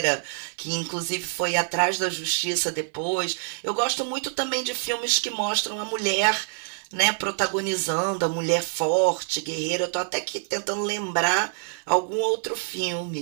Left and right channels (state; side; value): silent; left; 61 dB below the other